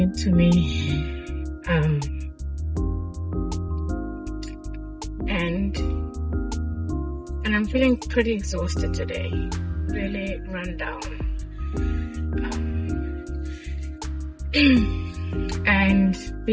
me. And I'm feeling pretty exhausted today, really run down. And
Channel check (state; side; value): identical; both; correlation 1.00